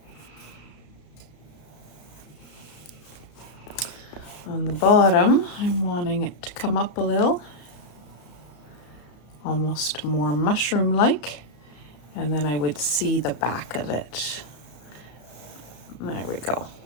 On the bottom, I'm wanting it to come up a little, almost more mushroom-like, and then I would see the back of it. There we go,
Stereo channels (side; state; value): right; late; 34 ms